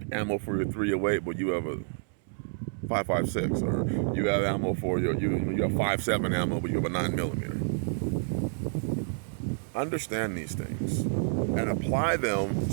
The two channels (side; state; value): left; silent; 59 dB below the other